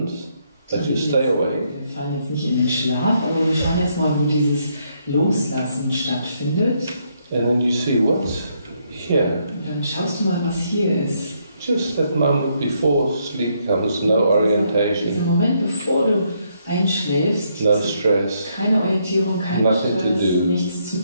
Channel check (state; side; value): inverted; both; correlation -0.74